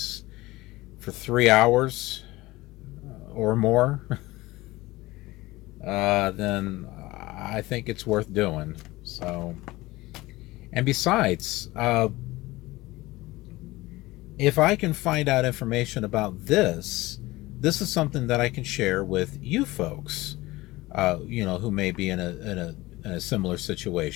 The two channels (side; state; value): right; quieter; 19.4 dB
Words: for 3 hours or more, then I think it's worth doing. So, and besides, if I can find out information about this is something that I can share with you folks, who may be in a similar